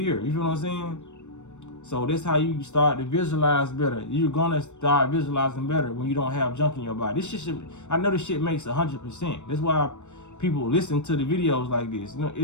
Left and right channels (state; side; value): late; right; 0.84 ms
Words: You feel what I'm saying? So that's how you start to visualize better. You're gonna start visualizing better when you don't have junk in your body. This shit, I know this shit makes 100%. That's why people listen to the videos like this. You know,